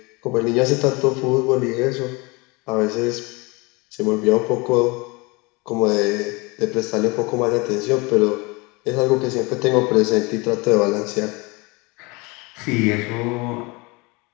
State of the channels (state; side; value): quieter; right; 26.4 dB